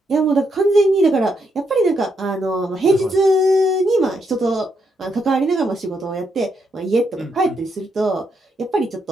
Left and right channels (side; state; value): both; normal; correlation 0.78